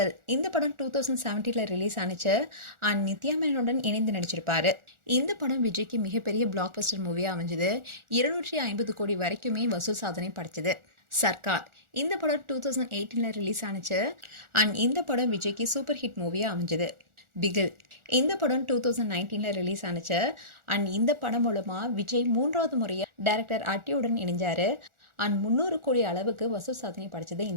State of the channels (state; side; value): late; left; 1.4 ms